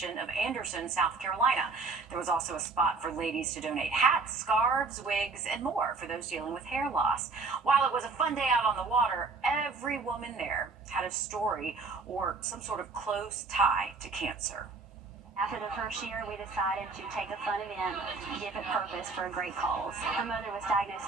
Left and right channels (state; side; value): quieter; left; 4.1 dB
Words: of Anderson, South Carolina. There was also a spot for ladies to donate hats, scarves, wigs, and more for those dealing with hair loss. While it was a fun day out on the water, every woman there had a story or some sort of close tie to cancer. After the first year, we decided to take a fun event, give it purpose for a great cause. Her mother was